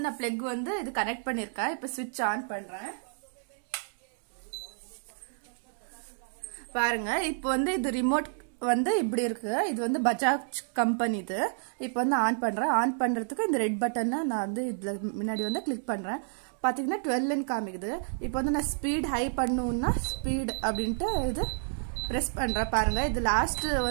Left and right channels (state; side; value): silent; left; digital silence